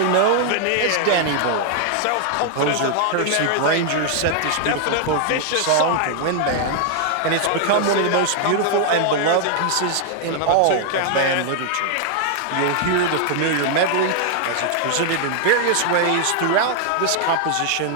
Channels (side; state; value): both; different; correlation 0.00